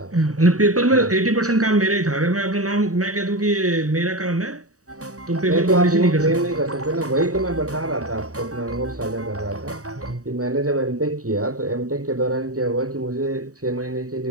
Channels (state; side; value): late; left; 0.66 ms